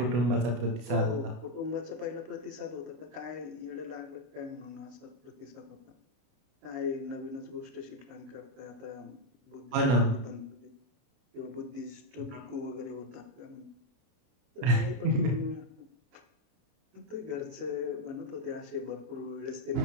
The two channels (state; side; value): late; left; 32 ms